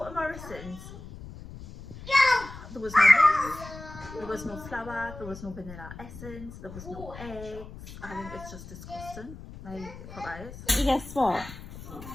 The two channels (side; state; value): left; noise; rumble, 14 dB below the sound